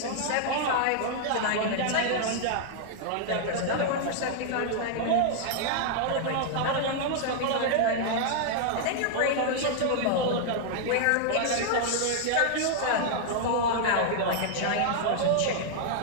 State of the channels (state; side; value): different; both; correlation -0.01